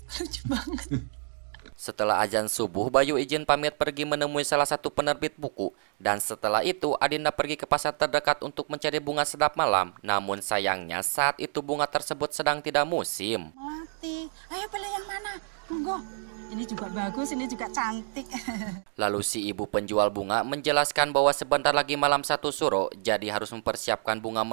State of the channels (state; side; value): silent; left; digital silence